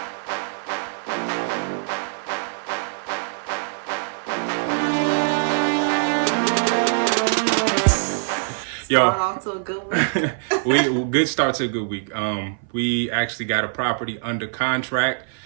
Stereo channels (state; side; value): silent; left; 58 dB below the other